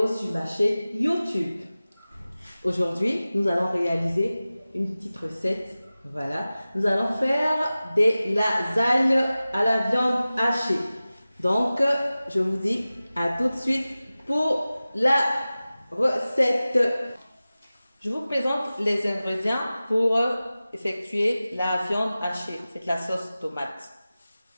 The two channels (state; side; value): inverted; both; correlation -0.97